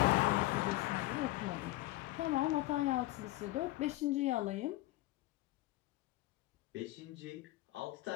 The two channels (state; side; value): quieter; right; 18.3 dB